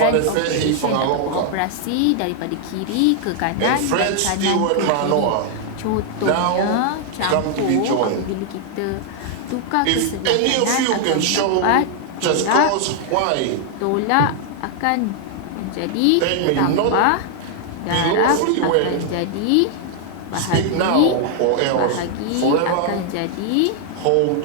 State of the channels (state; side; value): different; both; correlation 0.00